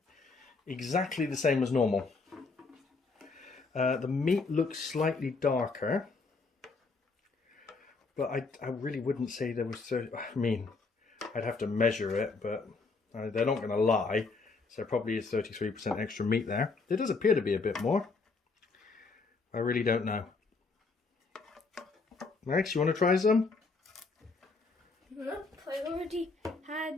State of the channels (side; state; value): right; quieter; 4.1 dB